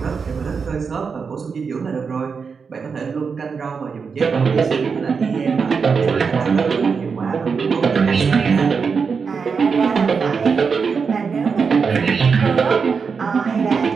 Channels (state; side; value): quieter; left; 5.6 dB